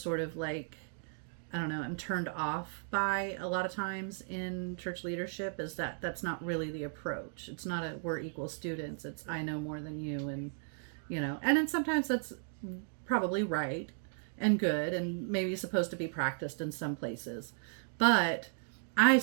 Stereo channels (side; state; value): left; silent; digital silence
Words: sort of like, I don't know, I'm turned off by a lot of times in church leadership, is that that's not really the approach. It's not a we're equal students. It's I know more than you, and and then sometimes that's probably right and good and maybe supposed to be practiced in some places. But I